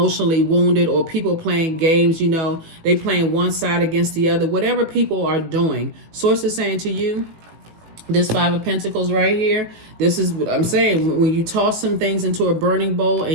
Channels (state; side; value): late; left; 18 ms